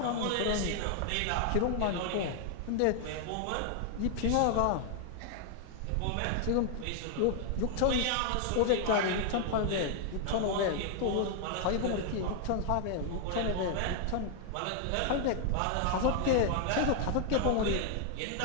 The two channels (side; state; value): both; different; correlation 0.00